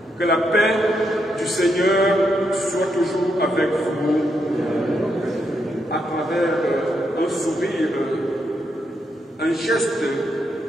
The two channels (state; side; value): normal; both; correlation 0.80